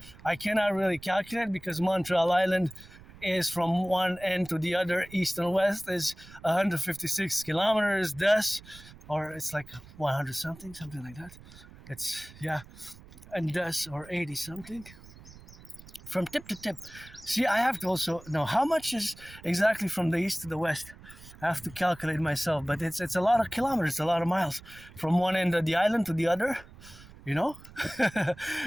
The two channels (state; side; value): noise; right; rumble, 20 dB below the sound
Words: I cannot really calculate, because Montreal Island is from one end to the other, east and west, is 156 kilometers, thus, or it's like 100 something like that. It's, yeah, and thus, or 80 something. From tip to tip. See, I have to also know how much is exactly from the east to the west. I have to calculate myself, but it's a lot of kilometers, a lot of miles from one end of the island to the other, you know.